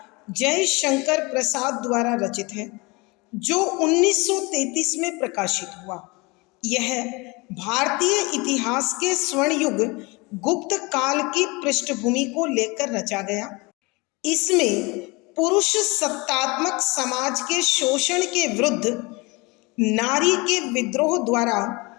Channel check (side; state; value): right; quieter; 26.1 dB